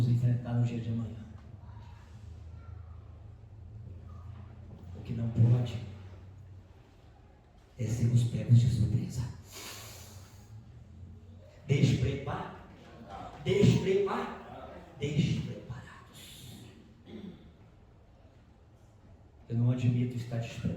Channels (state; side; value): identical; both; correlation 1.00